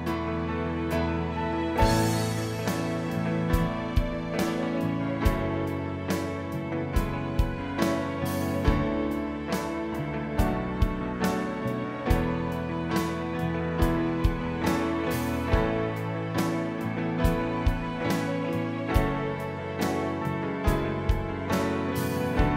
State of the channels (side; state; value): both; identical; correlation 1.00